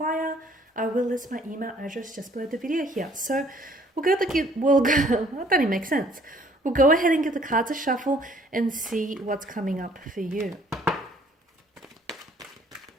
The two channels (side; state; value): both; normal; correlation 0.59